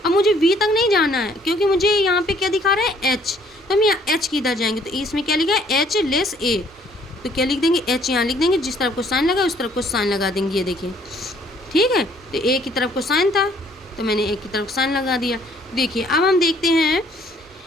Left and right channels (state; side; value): normal; both; correlation 0.61